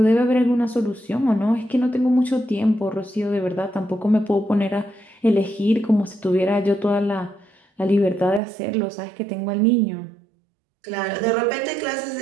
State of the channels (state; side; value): drops out; left; at 8.4 s